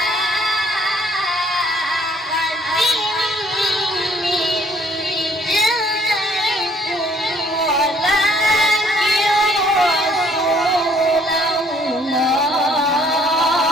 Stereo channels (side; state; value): both; normal; correlation 0.62